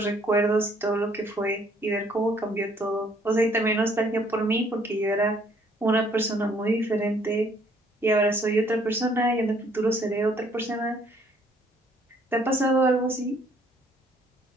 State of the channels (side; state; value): both; normal; correlation 0.63